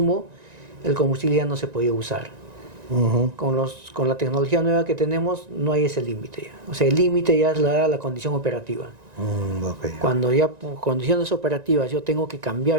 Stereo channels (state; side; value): late; left; 1.9 ms